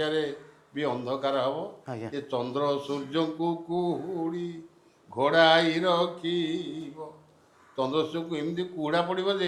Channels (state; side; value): identical; both; correlation 1.00